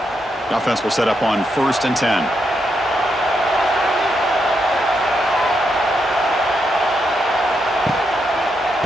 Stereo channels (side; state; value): both; normal; correlation 0.81